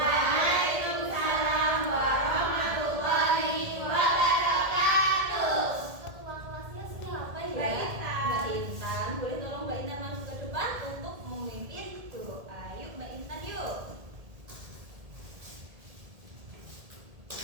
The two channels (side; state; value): left; late; 1.7 ms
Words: warahmatullahi wabarakatuh. Ketua kelasnya siapa ya? Mbak Intan. Mbak Intan. Boleh tolong Mbak Intan masuk ke depan untuk memimpin doa. Yuk Mbak Intan yuk.